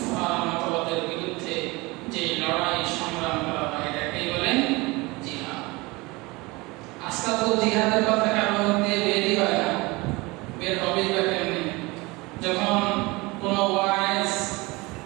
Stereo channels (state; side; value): quieter; left; 23.6 dB